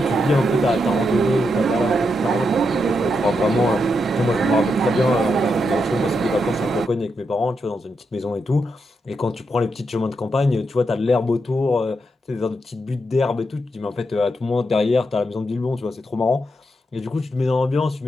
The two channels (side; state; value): both; normal; correlation 0.83